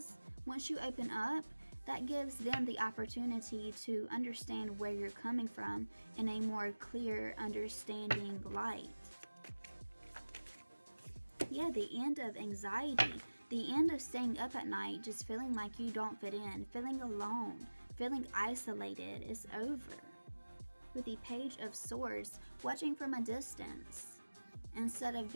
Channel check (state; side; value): inverted; both; correlation -1.00